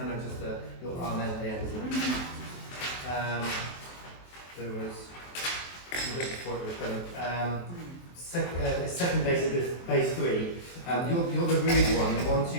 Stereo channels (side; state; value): right; late; 23 ms